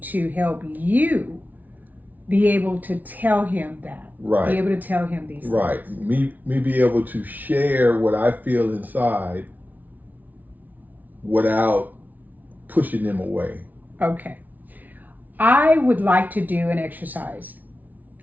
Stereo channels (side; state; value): left; late; 0.079 ms